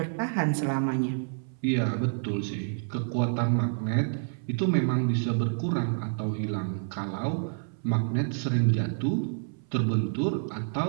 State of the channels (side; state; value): left; silent; 59 dB below the other